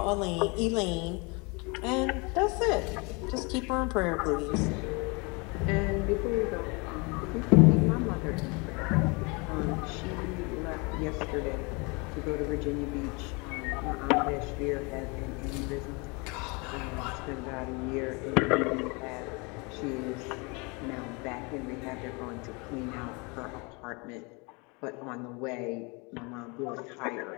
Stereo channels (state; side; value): quieter; right; 29.4 dB